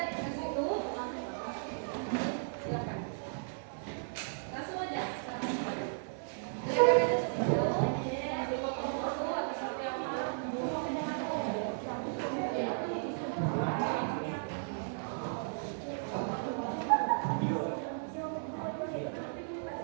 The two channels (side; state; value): left; silent; digital silence